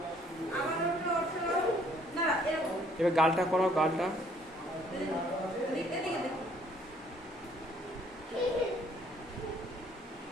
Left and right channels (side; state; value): both; normal; correlation 0.62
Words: এবার গালটা করাও, গালটা